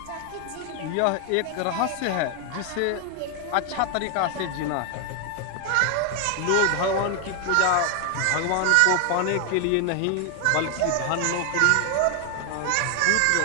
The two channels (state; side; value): different; both; correlation 0.00